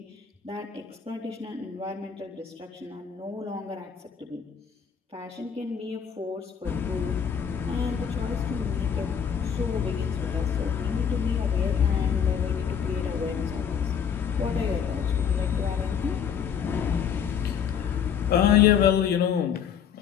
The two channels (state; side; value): quieter; right; 7.5 dB